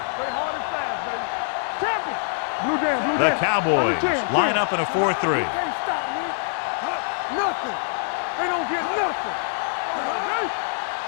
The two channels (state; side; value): silent; right; digital silence